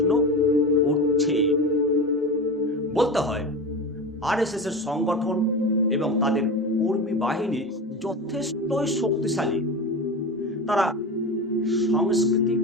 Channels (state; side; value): normal; both; correlation 0.26